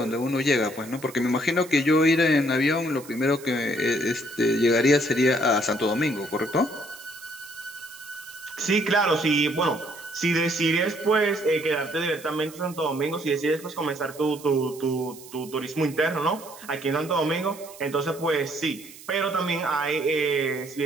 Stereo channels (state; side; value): noise; right; hiss, 18 dB below the sound